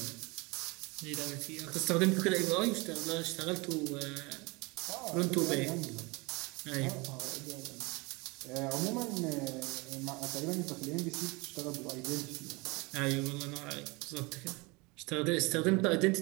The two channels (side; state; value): left; quieter; 26.3 dB